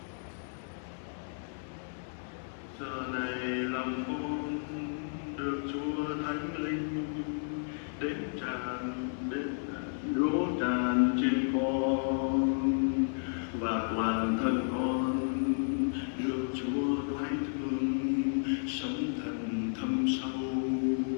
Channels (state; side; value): silent; right; 56 dB below the other